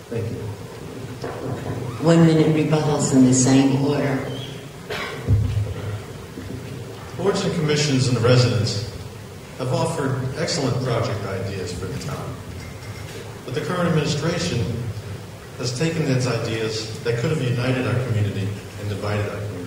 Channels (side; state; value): both; identical; correlation 1.00